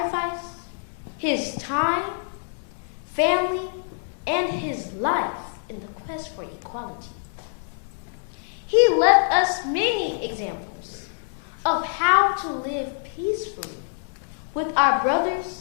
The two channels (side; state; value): right; silent; digital silence